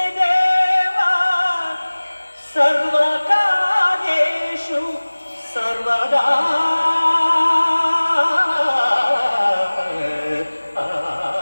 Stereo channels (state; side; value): inverted; both; correlation -1.00